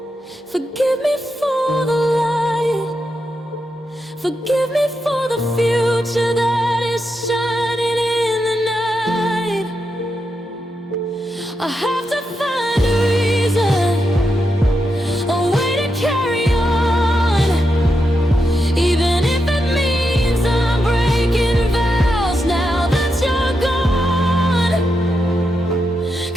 forgive me for the lying, forgive me for the future that is shining in the night. I have to find a reason, a way to carry on, even if it means I'm breaking vows now that you're gone.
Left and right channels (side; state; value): both; normal; correlation 0.85